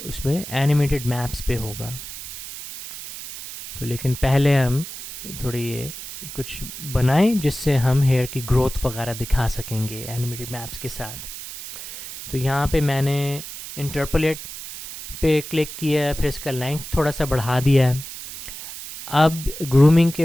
एनिमेटेड मैप्स पे होगा। तो लेकिन पहले हम थोड़ी ये कुछ बनाएं जिससे हम हेयर की ग्रोथ वगैरह दिखा सकेंगे एनिमेटेड मैप्स के साथ। तो यहाँ पे मैंने इंटरपोलेट पे क्लिक किया है, फिर इसका लेंथ थोड़ा सा बढ़ा दिया है। अब ग्रूमिंग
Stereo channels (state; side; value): noise; right; hiss, 11 dB below the sound